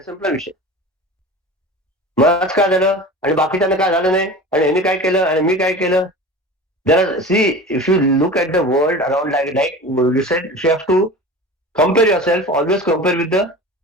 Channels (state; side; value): normal; both; correlation 0.35